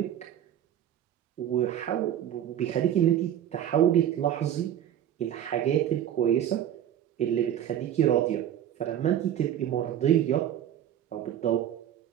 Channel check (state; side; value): quieter; left; 10.8 dB